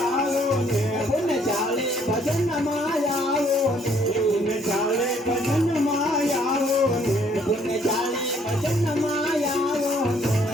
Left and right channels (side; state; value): both; normal; correlation 0.65